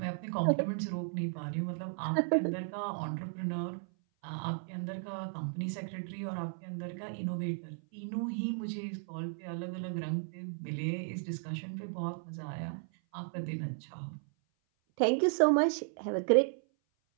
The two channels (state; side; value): silent; left; 55 dB below the other